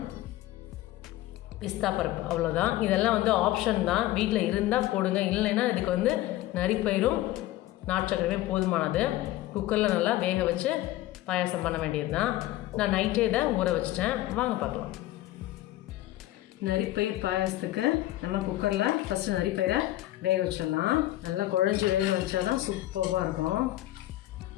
பிஸ்தா பருப்பு, அவ்வளோதான். இதெல்லாம் ஆப்ஷன் தான். வீட்டில் இருந்தால் போடுங்க, இல்லைன்னா இதுக்கு நரிப்பயிரும் நாட்டு சக்கரையுமே போதுமானது. குக்கரில் நல்லா வேக வச்சு பாயாசம் பண்ண வேண்டியது தான். நான் நைட்டே இதை ஊற வச்சிட்டேன். வாங்க பார்க்கலாம். நரிப்பயிர் பாயாசத்துக்கு நம்ம குக்கரில் ஃபஸ்ட்டு நரிப்பயிரை வேக வச்சிடலாம். நல்லா குழஞ்சி வேக வச்சா தான் சூப்பராக இருக்கும்.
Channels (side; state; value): right; quieter; 15.8 dB